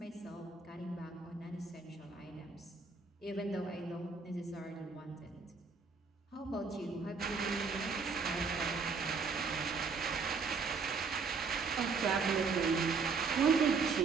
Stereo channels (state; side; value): quieter; left; 4.9 dB